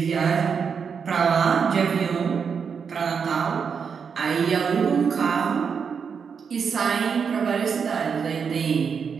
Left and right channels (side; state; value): left; quieter; 6.3 dB